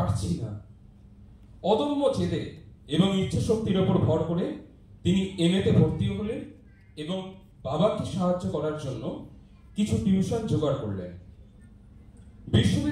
না। অদম্য জেদে এবং ইচ্ছা শক্তির উপর ভর করে তিনি এমএতে ভর্তি হলেন এবং বাবাকে সাহায্য করার জন্য কিছু টিউশন জোগাড় করলেন।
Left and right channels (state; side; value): identical; both; correlation 1.00